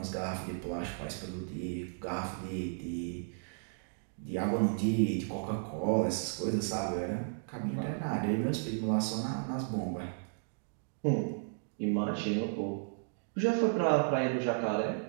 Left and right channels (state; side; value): silent; left; digital silence